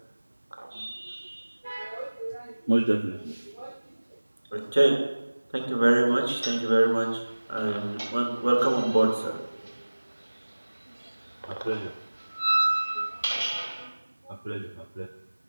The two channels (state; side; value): inverted; both; correlation -1.00